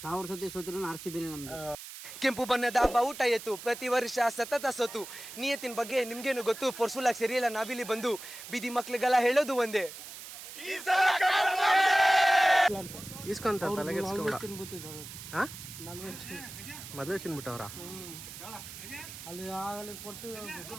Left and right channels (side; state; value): right; noise; hiss, 12 dB below the sound